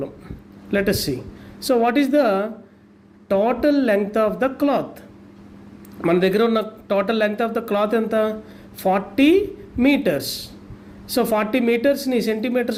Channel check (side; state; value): both; identical; correlation 1.00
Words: Let us see. So what is the total length of the cloth? మన దగ్గర ఉన్న total length of the cloth ఎంత? 40 meters. So 40 metersని